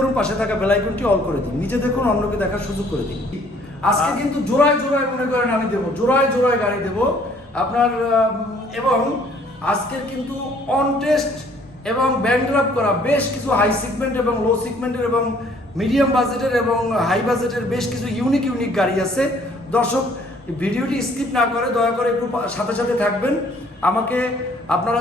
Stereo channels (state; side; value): normal; both; correlation 0.60